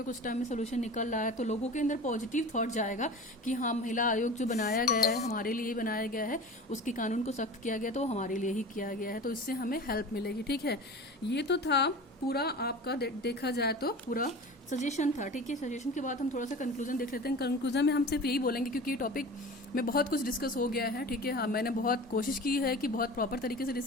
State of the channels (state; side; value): normal; both; correlation 0.35